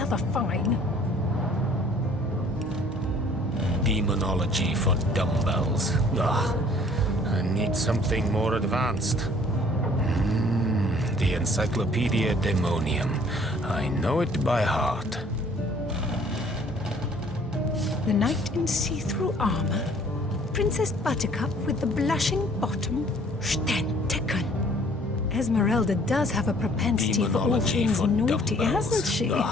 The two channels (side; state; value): both; normal; correlation 0.56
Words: fine. Demonology for dumbbells. Ugh. I need something more advanced. The Encyclopedia Demonium. I know it by heart. The knight in see-through armor. Princess Buttercup with the blushing bottom. Stentiken. Esmeralda does have a propensity for all things naughty, hasn't she?